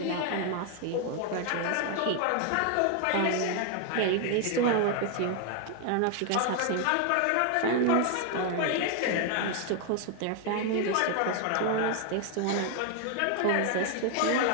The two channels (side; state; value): both; different; correlation 0.01